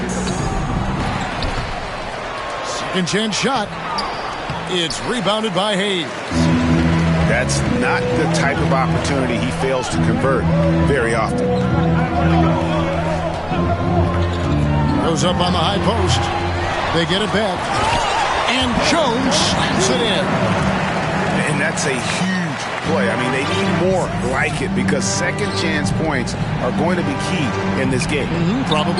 Second chance shot. It's rebounded by Hayes. That's not the type of opportunity he fails to convert very often. Goes up on the high post. They get it back. And Jones slams it in. And that's a huge play. I mean, they need more like it because second chance points are going to be key in this game.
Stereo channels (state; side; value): identical; both; correlation 1.00